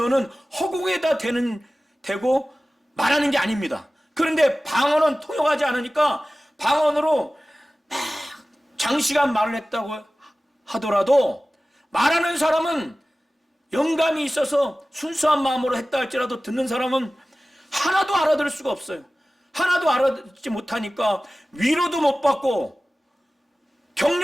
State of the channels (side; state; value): both; normal; correlation 0.97